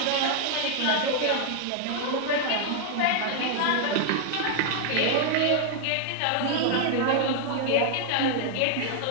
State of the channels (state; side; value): different; both; correlation 0.00